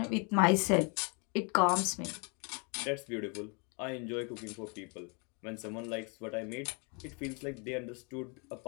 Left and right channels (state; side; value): quieter; right; 34.2 dB